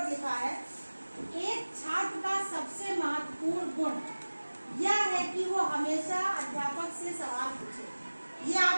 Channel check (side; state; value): both; inverted; correlation -1.00